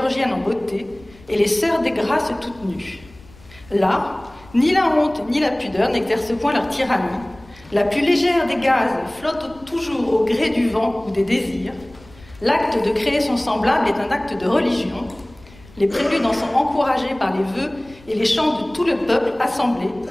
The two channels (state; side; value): noise; left; rumble, 24 dB below the sound